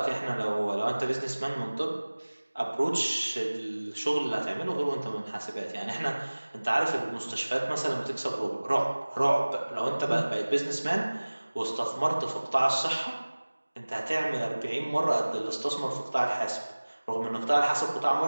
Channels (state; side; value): inverted; both; correlation -1.00